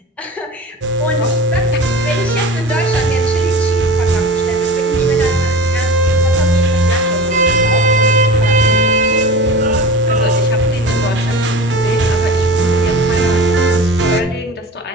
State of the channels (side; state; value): both; normal; correlation 0.35